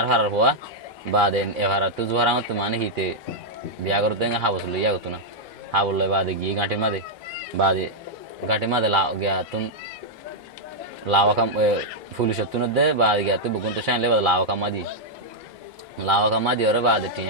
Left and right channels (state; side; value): normal; both; correlation -0.04